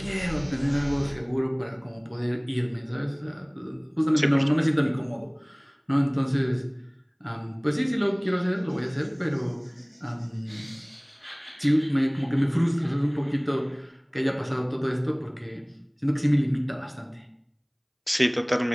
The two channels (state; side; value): identical; both; correlation 1.00